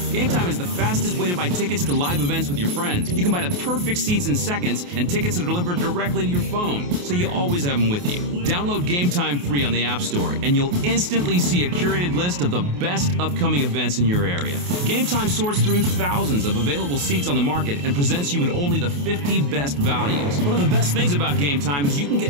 Game Time is the fastest way to buy tickets to live events with your friends. You can buy the perfect seats in seconds, and tickets are delivered directly to your phone, so you always have them with you. Download Game Time free on the App Store, and you'll instantly see a curated list of the best upcoming events in your area. Game Time sorts through thousands of available seats on the market and presents you with only the 50 best values. One of the best things about Game Time is you can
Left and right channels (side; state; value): left; late; 28 ms